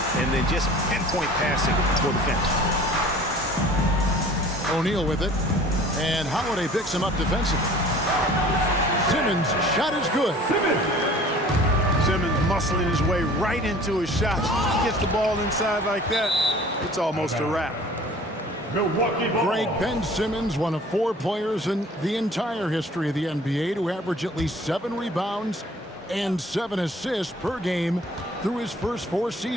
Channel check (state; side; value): normal; both; correlation 0.48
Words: and then just pinpoint passing for the finish. O'Neal with it. And Holiday picks him up defensively. Simmons' shot is good. Simmons muscling his way right into his shot. He gets the ball inside like that, it's almost a wrap. Milwaukee ball. Greg Ben Simmons, one of 4 players in the entire history of the NBA to average at least 7 rebounds and 7 assists per game through his first 4